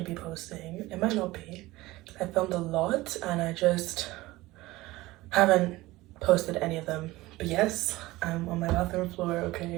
gonna be posting. It might not be. I filmed a lot and I just haven't posted any of them. But yes, I'm on my bathroom floor,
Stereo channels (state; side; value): quieter; left; 19.1 dB